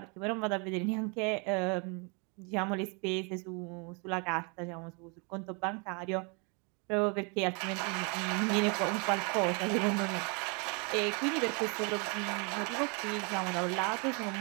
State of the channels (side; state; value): left; quieter; 33.4 dB